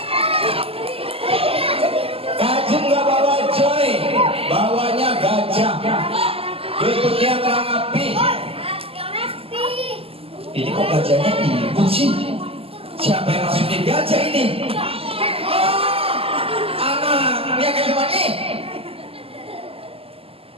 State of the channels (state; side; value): late; left; 0.28 ms